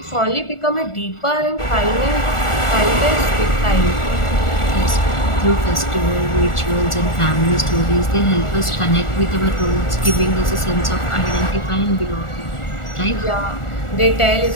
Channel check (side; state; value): right; late; 1.4 ms